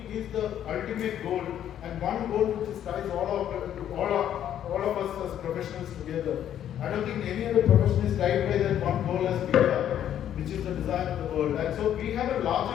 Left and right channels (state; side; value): quieter; right; 10.5 dB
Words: is the ultimate goal, and one goal which ties all of us as professionals together. I don't think any other profession is tied by that one goal as we are, which is the design of the world. And so we have a